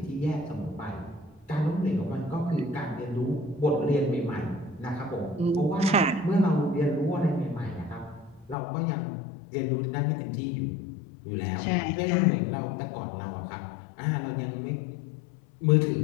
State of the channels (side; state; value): right; drops out; at 8.6 s